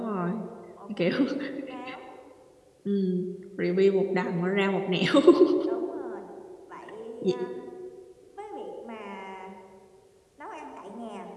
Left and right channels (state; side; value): identical; both; correlation 1.00